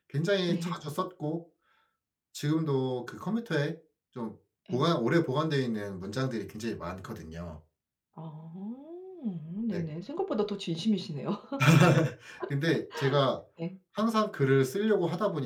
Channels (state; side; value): identical; both; correlation 1.00